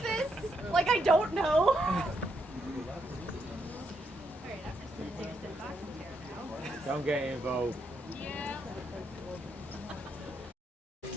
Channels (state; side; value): normal; both; correlation 0.78